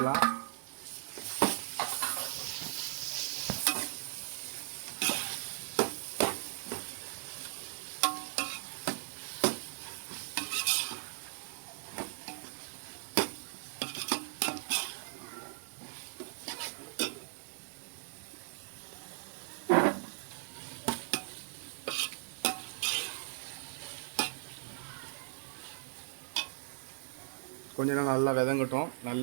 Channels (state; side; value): silent; left; digital silence